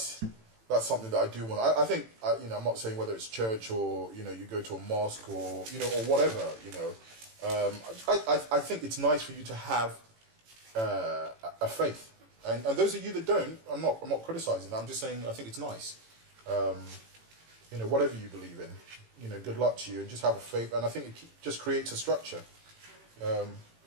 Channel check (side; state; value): left; late; 18 ms